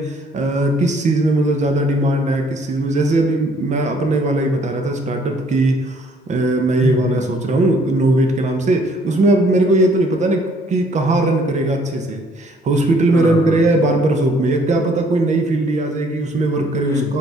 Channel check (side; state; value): both; normal; correlation 0.62